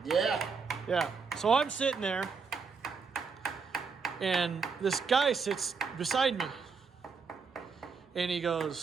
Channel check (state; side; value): quieter; left; 5.3 dB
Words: Yeah. Yeah. So I'm sitting there, and this guy sits beside me. And he